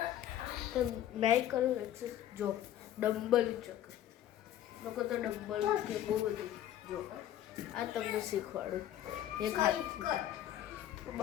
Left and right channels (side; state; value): right; quieter; 11.9 dB